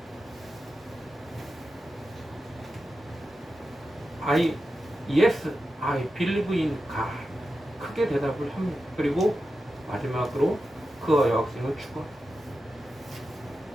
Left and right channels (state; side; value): normal; both; correlation 0.91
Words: 말해요. Yes, I believe in God. 크게 대답을 합니다. 그리고 마지막으로 그 여학생은 죽어요.